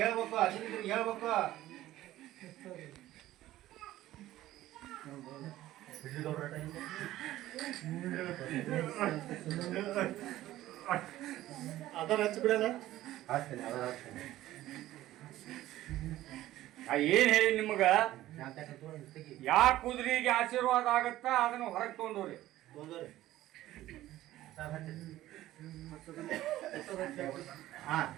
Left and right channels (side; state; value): left; quieter; 14.9 dB